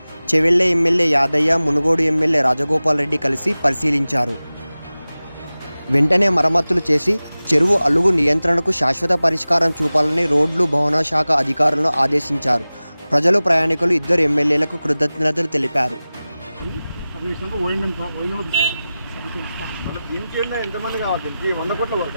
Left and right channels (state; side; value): inverted; both; correlation -0.97